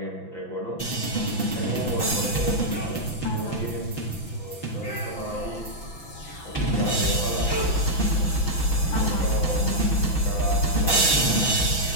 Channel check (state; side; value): late; right; 6.0 ms